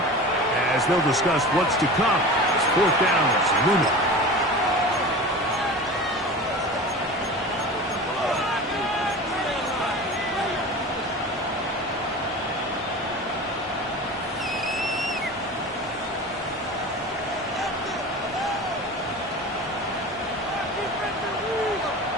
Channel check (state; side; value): normal; both; correlation 0.34